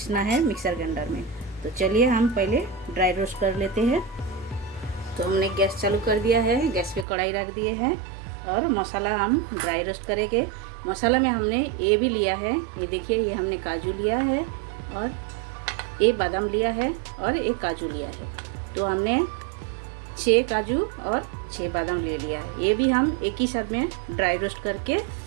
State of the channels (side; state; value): left; drops out; at 7.1 s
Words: है मिक्सर ग्राइंडर में। तो चलिए हम पहले ड्राई रोस्ट कर लेते हैं। तो हमने गैस चालू कर दिया है, गैस पे कढ़ाई रख दिए हैं, और मसाला हम ड्राई रोस्ट करेंगे। मसाला में हमने ये भी लिया है, ये देखिए, ये हमने काजू लिया है, और ये बादाम लिया है, और एक काजू लिया है। तो हमने 6 काजू और 6 बादाम ले लिया है। ये भी हम एक ही साथ में ड्राई रोस्ट करके